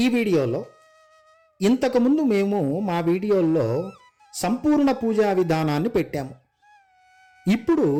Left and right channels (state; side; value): identical; both; correlation 1.00